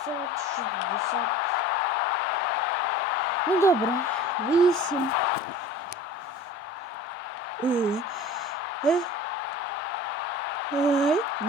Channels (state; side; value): normal; both; correlation 0.41